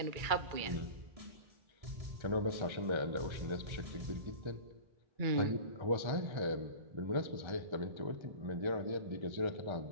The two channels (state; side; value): late; left; 1.3 ms